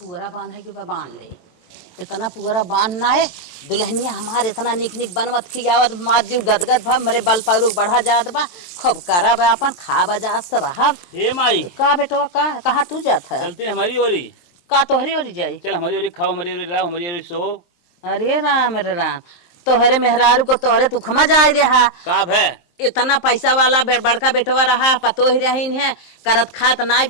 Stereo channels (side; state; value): right; late; 23 ms